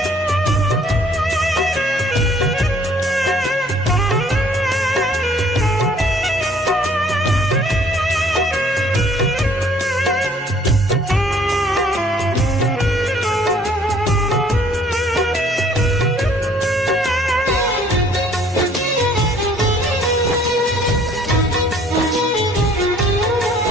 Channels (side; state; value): both; normal; correlation 0.58